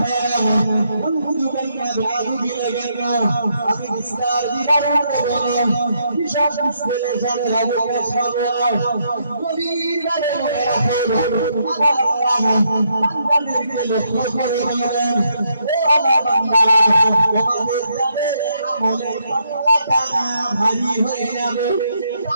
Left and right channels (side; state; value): both; inverted; correlation -0.76